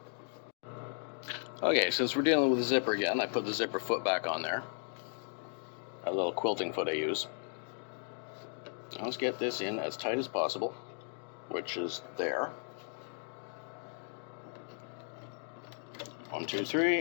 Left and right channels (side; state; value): right; silent; 54 dB below the other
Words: Okay, since we're dealing with the zipper again, I put the zipper foot back on there. A little quilting foot I use. Now let's get this in as tight as possible, which is there. 1, 2,